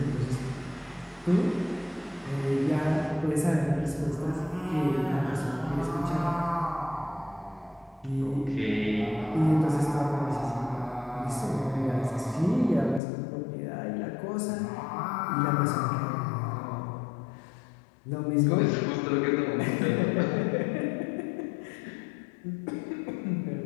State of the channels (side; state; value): right; drops out; at 13.0 s